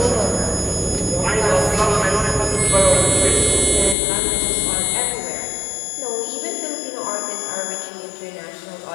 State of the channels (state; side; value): drops out; right; at 4.0 s